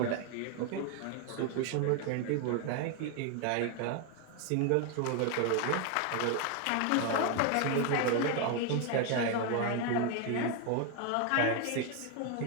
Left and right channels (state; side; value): different; both; correlation 0.01